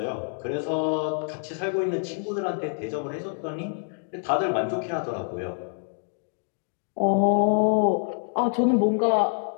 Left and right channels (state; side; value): silent; right; 61 dB below the other